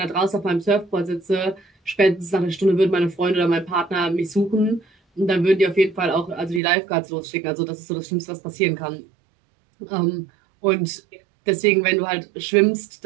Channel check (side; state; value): left; drops out; at 6.6 s